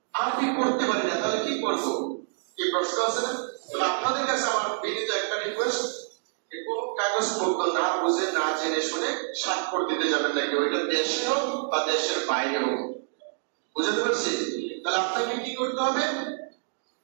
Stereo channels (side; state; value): left; silent; digital silence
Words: আরবি পড়তে পারি না, তাহলে কি করব? কি প্রশ্ন আছে না? আপনাদের কাছে আমার বিনীত একটা রিকোয়েস্ট, কোন কাগজপত্র না বুঝে না জেনে শুনে স্বাক্ষর দিতে যাবেন না কেউ, এটা দেশে হোক বা দেশের বাইরে হোক। বুঝতে পারছি? তাহলে আপনাকে কি করতে হবে?